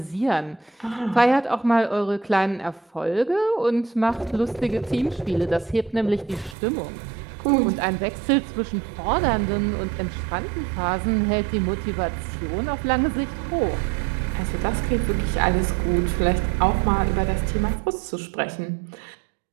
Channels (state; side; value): drops out; left; at 6.6 s